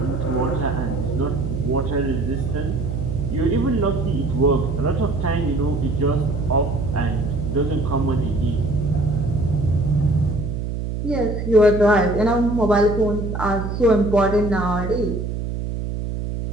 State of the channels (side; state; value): right; noise; hum, 4 dB below the sound